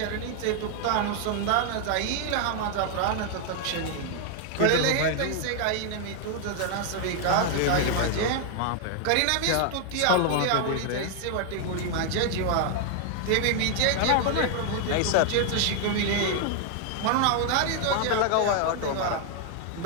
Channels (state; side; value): different; both; correlation 0.00